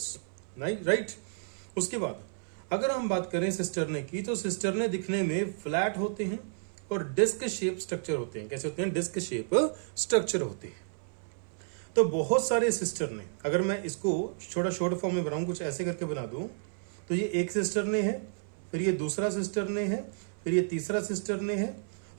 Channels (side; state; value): left; silent; 57 dB below the other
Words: राइट। उसके बाद अगर हम बात करें सिस्टरने की, तो सिस्टरने दिखने में फ्लैट होते हैं और डिस्क शेप स्ट्रक्चर होते हैं। कैसे होते हैं? डिस्क शेप स्ट्रक्चर होते हैं। तो बहुत सारे सिस्टरने, अगर मैं इसको छोटा शॉर्ट फॉर्म में बनाऊं, कुछ ऐसे करके बना दूं, तो ये एक सिस्टरने है, फिर ये दूसरा सिस्टरने है, फिर ये तीसरा सिस्टरने है।